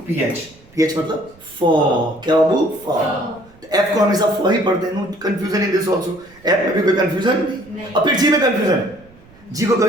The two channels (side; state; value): right; noise; rumble, 26 dB below the sound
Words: पीएच, पीएच मतलब फॉ। क्या बाबू, फॉ। एफ को हमेशा फॉ ही पढ़ते हैं, no confusion in this also. F में भी कोई कंफ्यूजन नहीं। और फिर जी में कंफ्यूजन है, जी को